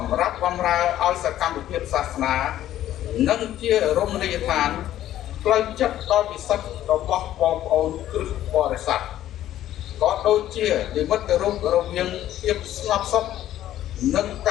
ម្រាប់បម្រើឲ្យសកម្មភាពសាសនានិងជារមណីយដ្ឋានផ្លូវចិត្តដ៏ពិសិដ្ឋរបស់បងប្អូនគ្រឹះបរិស័ទក៏ដូចជានិមិត្តរូបរវាងភាពស្ងប់សុខនិងក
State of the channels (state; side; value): quieter; right; 12.7 dB